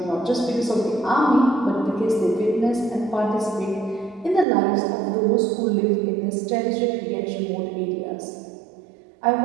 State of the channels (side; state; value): left; drops out; at 4.5 s